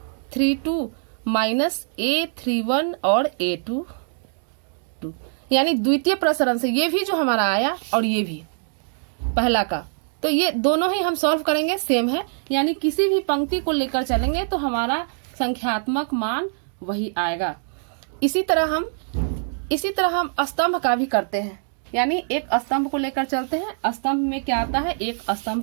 माइनस A31 और A22 यानी द्वितीय प्रसरण से ये भी जो हमारा आया और ये भी पहला का, तो ये दोनों ही हम सॉल्व करेंगे सेम है, यानी किसी भी पंक्ति को लेकर चलेंगे तो हमारा संख्यात्मक मान वही आएगा। इसी तरह हम स्तंभ का भी करते हैं, यानी एक स्तंभ को लेकर चलते हैं। स्तंभ में क्या आता है, एक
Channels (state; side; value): silent; left; digital silence